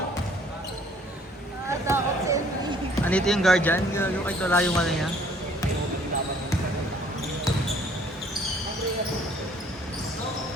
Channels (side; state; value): both; normal; correlation 0.58